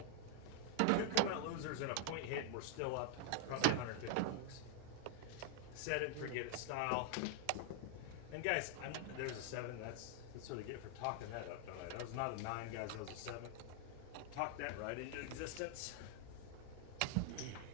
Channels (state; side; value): different; both; correlation 0.00